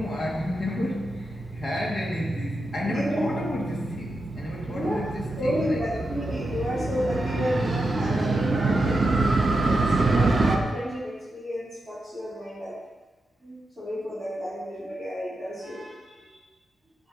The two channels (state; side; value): normal; both; correlation 0.88